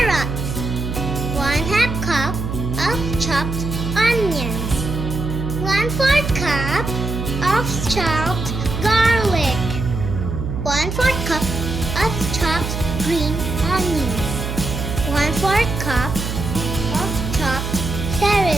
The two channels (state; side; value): noise; right; hum, 4 dB below the sound